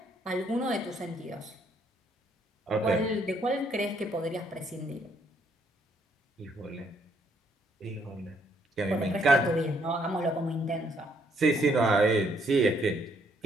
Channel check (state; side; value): normal; both; correlation 0.69